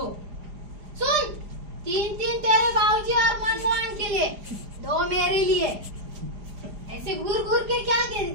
सुन, 3-3 तेरे बाबूजी और मनमोहन के लिए, 2 मेरे लिए। ऐसे घूर घूर के क्या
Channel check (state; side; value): late; left; 4.9 ms